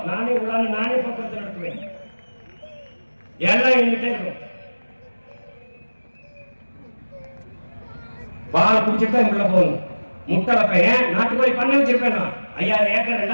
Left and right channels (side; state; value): both; inverted; correlation -1.00